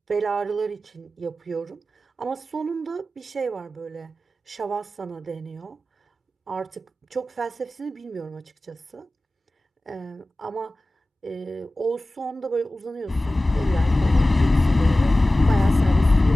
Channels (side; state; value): both; normal; correlation 0.96